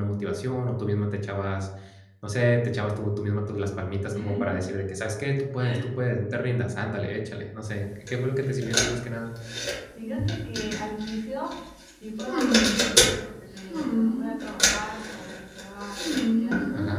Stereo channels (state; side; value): identical; both; correlation 1.00